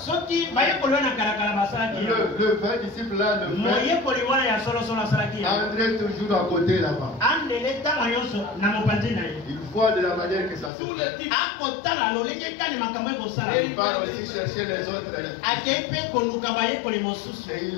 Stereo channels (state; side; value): drops out; right; at 10.7 s